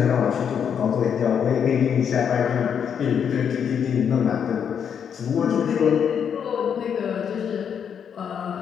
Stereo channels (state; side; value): quieter; right; 7.8 dB